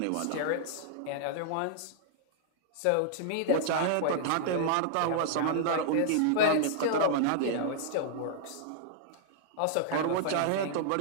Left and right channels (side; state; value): both; different; correlation -0.01